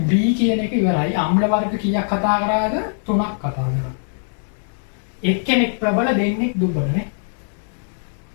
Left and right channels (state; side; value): silent; right; digital silence